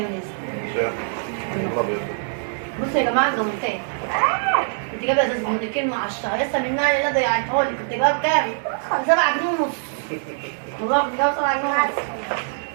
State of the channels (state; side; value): silent; left; 63 dB below the other